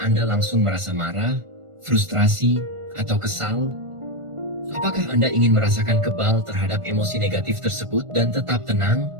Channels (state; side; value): late; left; 1.4 ms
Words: langsung merasa marah, frustrasi, atau kesal? Apakah Anda ingin merasakan kebal terhadap emosi negatif tersebut dan tetap tenang,